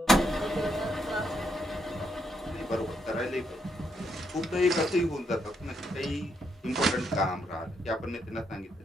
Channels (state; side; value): normal; both; correlation 0.78